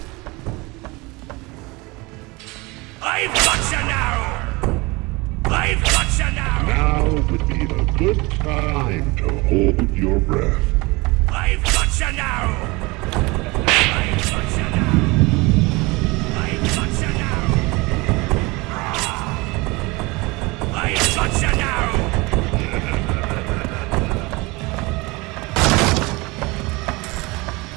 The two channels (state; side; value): quieter; left; 24.4 dB